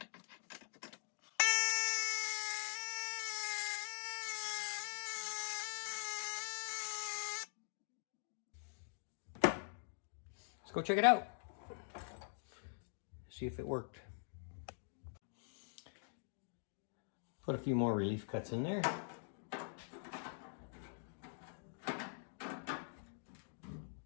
Let's go check it out. See if it worked. Put a few more relief cuts in there.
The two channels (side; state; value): right; silent; digital silence